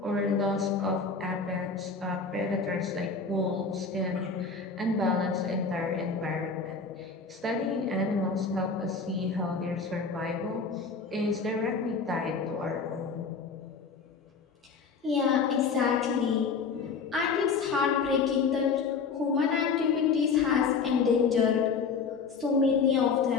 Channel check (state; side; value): quieter; right; 5.1 dB